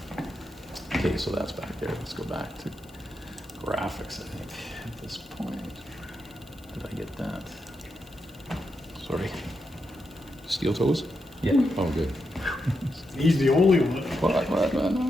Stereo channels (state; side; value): noise; left; hiss, 27 dB below the sound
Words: Okay, so that's back there. Let's go back to graphics, I think, at this point. Did I get that? Sorry. Steel toes? Yeah. Oh, good. He's the only one. What?